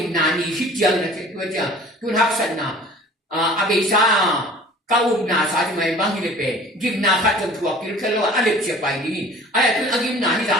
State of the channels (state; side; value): normal; both; correlation 0.46